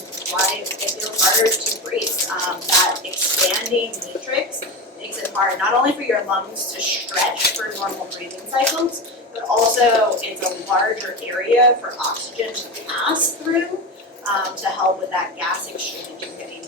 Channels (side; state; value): both; normal; correlation 0.21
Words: why it feels harder to breathe. That expanding matrix makes it hard not only for your lungs to stretch for normal breathing cycles, but also it's a larger area for oxygen to pass through to help with that gas exchange and getting